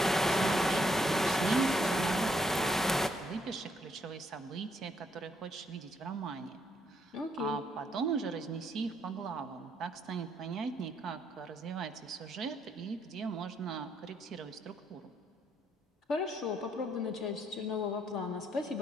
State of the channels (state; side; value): normal; both; correlation 0.72